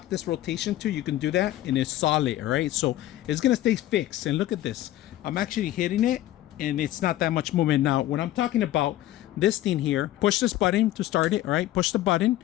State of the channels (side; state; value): right; quieter; 14.4 dB